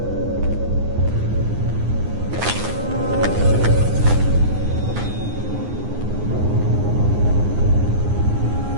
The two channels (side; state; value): left; late; 9.7 ms